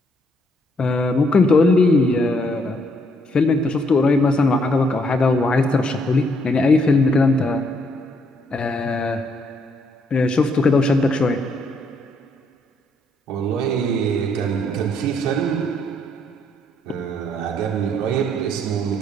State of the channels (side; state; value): both; normal; correlation 0.71